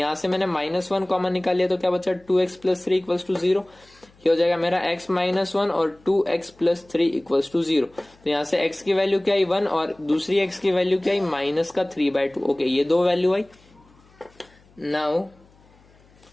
से मैंने -1 कॉमन निकाल लिया, तो क्या बचा? 2x plus 3 equals to 0। ये हो जाएगा मेरा x माइनस 1 और 2x प्लस 3 इक्वल्स टू 0। तो यहाँ से x की वैल्यू क्या आई? 1, और दूसरी x की वैल्यू क्या आई? माइनस का 3/2। ओके, ये दो वैल्यू आई। Now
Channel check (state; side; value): noise; left; hum, 29 dB below the sound